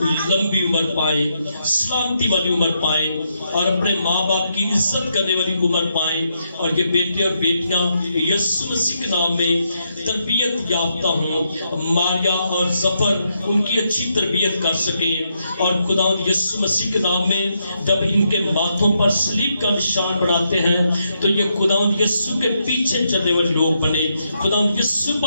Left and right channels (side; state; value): both; inverted; correlation -0.80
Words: لمبی عمر پائیں, سلامتی والی عمر پائیں, اور اپنے ماں باپ کی عزت کرنے والی عمر پائیں, اور یہ بیٹے اور بیٹیاں یسوع مسیح کے نام میں تربیت یافتہ ہوں, ماریا اور ظفر ان کی اچھی تربیت کر سکیں, اور خداوند یسوع مسیح کے نام میں جب ان کے ماتھوں پر صلیب کا نشان بناتے ہیں تو یہ خداوند یسوع کے پیچھے چلنے والے لوگ بنے, خداوند یسوع